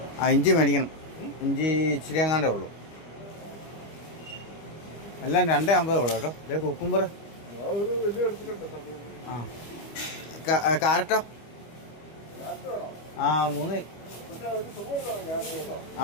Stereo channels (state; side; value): late; right; 25 ms